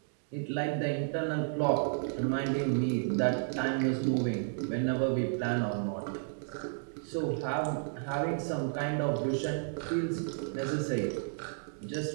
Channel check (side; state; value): left; silent; digital silence